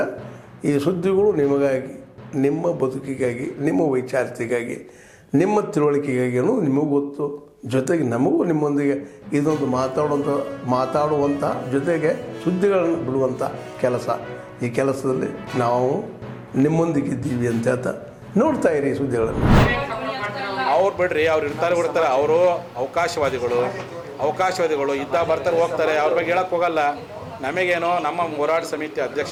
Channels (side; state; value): both; identical; correlation 1.00